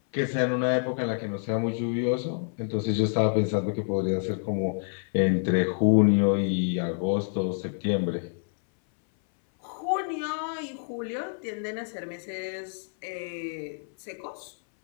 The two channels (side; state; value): right; silent; 60 dB below the other